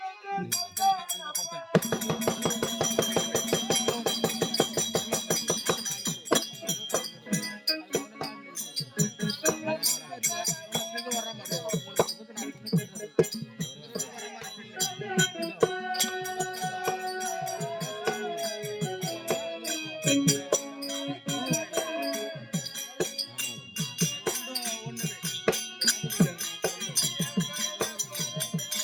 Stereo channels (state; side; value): identical; both; correlation 1.00